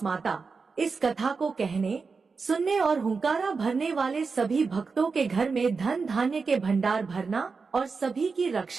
माता, इस कथा को कहने सुनने और हुंकारा भरने वाले सभी भक्तों के घर में धन धान्य के भंडार भरना और सभी की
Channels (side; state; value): left; quieter; 4.8 dB